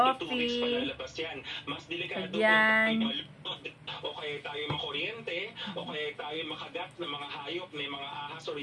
1 to 2 weeks palalabas yan. Mas delikado kung tayo malunod o kaya tayo makuryente o kaya tayo makagat ng mga hayop, may mga ahas o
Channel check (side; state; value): both; identical; correlation 1.00